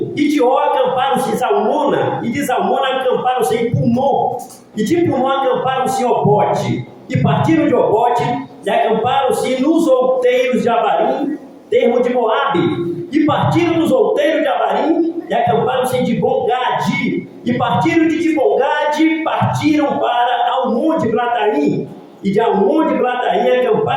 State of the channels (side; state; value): both; identical; correlation 1.00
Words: E de Ó acamparam-se em Zalmona. E de Zalmona acamparam-se em Punon. E de Punon acamparam-se em Obote. E partiram de Obote e acamparam-se nos outeiros de Abarim, termo de Moabe. E partiram dos outeiros de Abarim e acamparam-se em Dibon-Gade. E partiram de Dibon-Gade, partiram para Almon de Blataim. E de Almon de Glataim